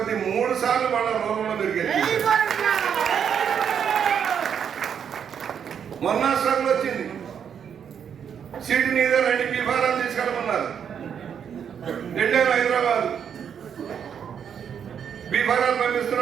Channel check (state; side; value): quieter; left; 7.9 dB